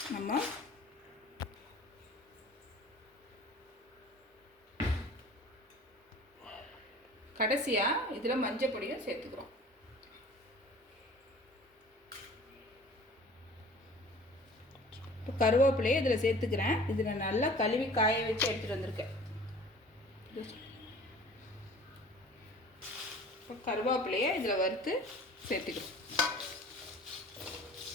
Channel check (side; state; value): both; normal; correlation 0.46